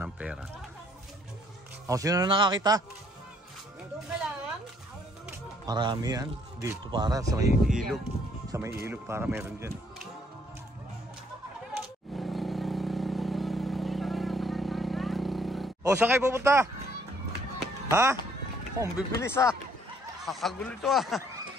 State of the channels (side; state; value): both; normal; correlation 0.65